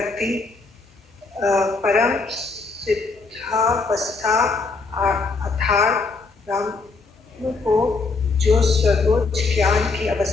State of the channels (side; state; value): right; quieter; 4.0 dB